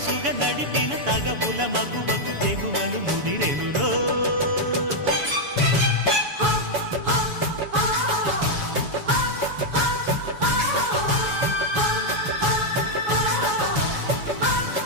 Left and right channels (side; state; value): left; late; 7.1 ms